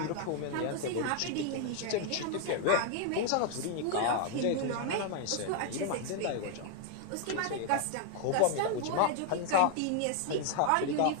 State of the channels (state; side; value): different; both; correlation 0.00